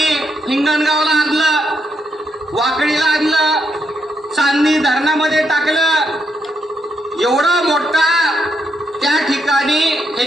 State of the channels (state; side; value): normal; both; correlation 0.78